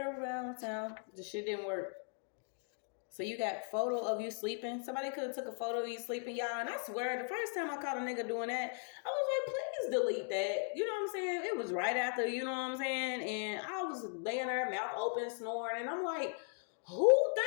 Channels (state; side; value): silent; right; 52 dB below the other